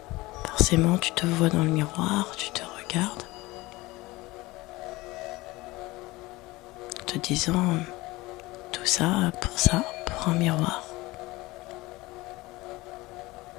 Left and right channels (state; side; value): quieter; right; 20.6 dB